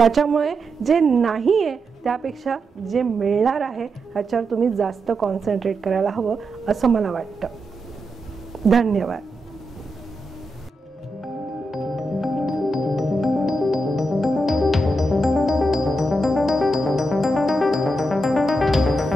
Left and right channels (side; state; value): both; normal; correlation 0.86